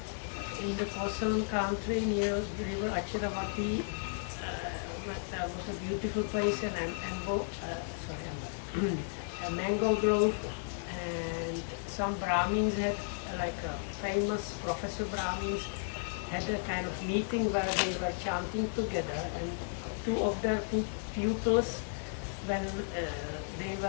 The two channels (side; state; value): right; silent; 55 dB below the other